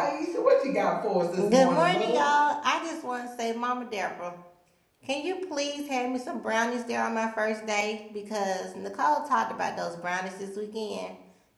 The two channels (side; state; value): both; identical; correlation 1.00